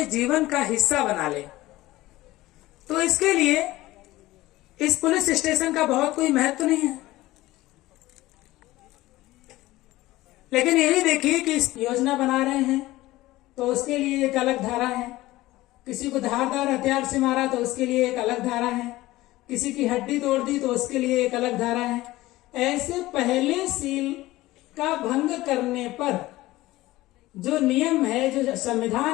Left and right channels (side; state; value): right; quieter; 17.7 dB